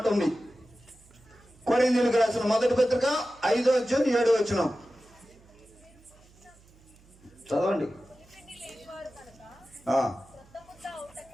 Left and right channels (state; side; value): noise; right; hum, 27 dB below the sound